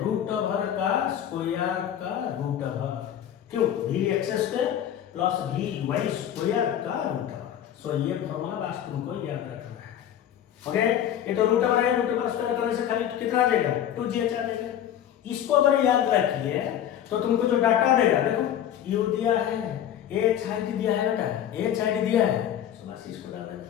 रूट ओवर का स्क्वायर का रूट ओवर, क्यों vx square plus vy square का रूट ओवर। सो ये फॉर्मूला बस तुमको याद रखना है। ओके, ये तो रूट ओवर है, रूट ओवर स्क्वायर करने से खाली कितना आ जाएगा 2gh आ जाएगा। इसको अगर याद रखिए तो तुमको जो डाटा देगा, देखो u दिया है, h हाइट दिया है बेटा, h हाइट दिया है, सो बस इसको डाल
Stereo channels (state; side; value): quieter; right; 10.4 dB